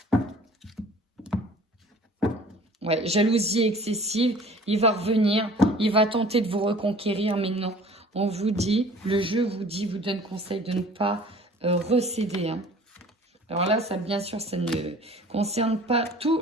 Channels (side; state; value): both; normal; correlation 0.48